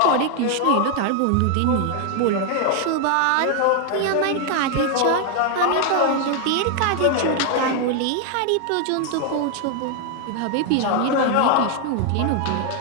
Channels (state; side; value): different; both; correlation 0.00